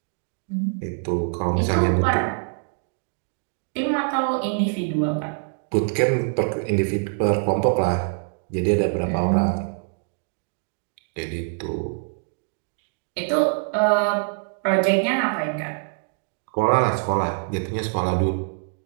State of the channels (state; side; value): silent; left; 62 dB below the other